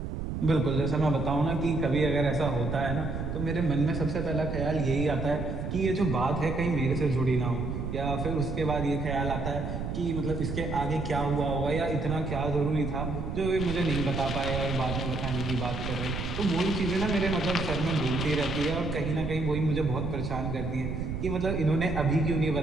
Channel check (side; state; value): right; noise; rumble, 4 dB below the sound